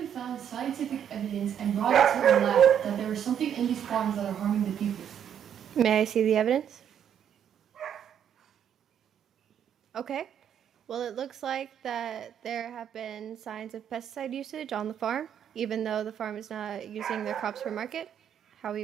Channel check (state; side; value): quieter; left; 9.0 dB